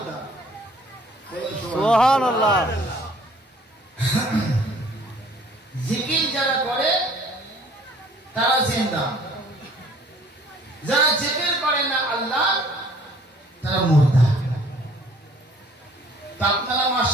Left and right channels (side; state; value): both; normal; correlation 0.56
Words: সুবহানাল্লাহ জিকির যারা করে তারা জিন্দা যারা জিকির করে না আল্লাহ তারা মুর্দা তা আপনারা